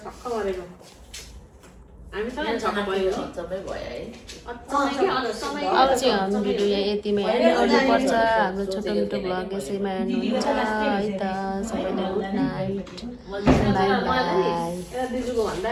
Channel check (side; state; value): both; identical; correlation 1.00